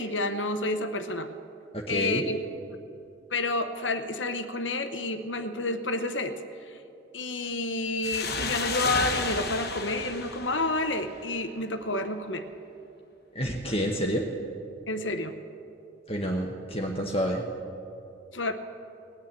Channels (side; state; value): both; normal; correlation 0.07